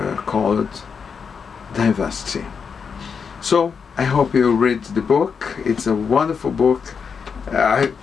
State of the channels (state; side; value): quieter; right; 6.1 dB